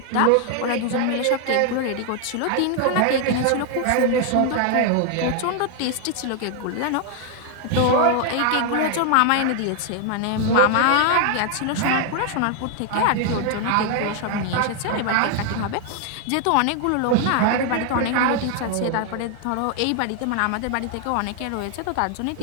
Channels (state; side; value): different; both; correlation 0.00